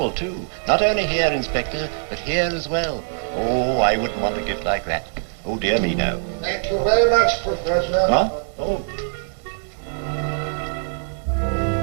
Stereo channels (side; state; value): left; silent; 64 dB below the other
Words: too. Not only here, Inspector, but here as well. Oh, I wouldn't want a gift like that. Oh, dear me, no. Thank you very much, Professor. What? Oh.